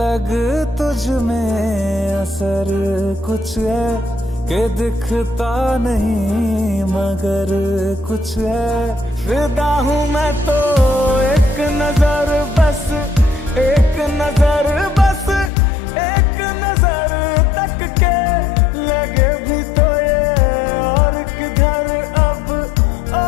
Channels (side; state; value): right; drops out; at 15.5 s